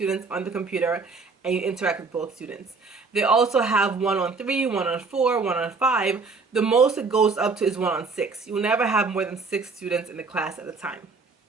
on the computer and you interact with both students. They also have 1-on-3, 1-on-4, 1-on-5. The most it goes up to is 1-on-6. You'll never have more than 6 students in the class at a time.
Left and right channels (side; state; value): left; quieter; 4.4 dB